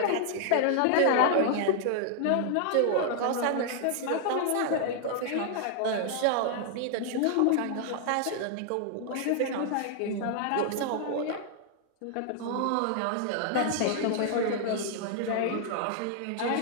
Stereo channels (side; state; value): both; different; correlation 0.00